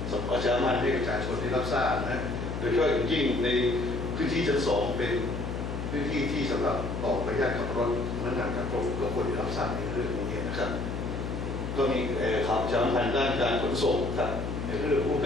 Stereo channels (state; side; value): noise; left; hum, 4 dB below the sound